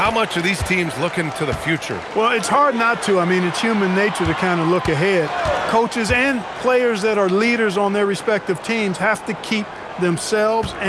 much are these teams looking to the future? Well, it's hard not to. I mean, it's human nature to kind of look ahead. Coaches and players that are leaders on their respective teams have to keep themselves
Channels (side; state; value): both; identical; correlation 1.00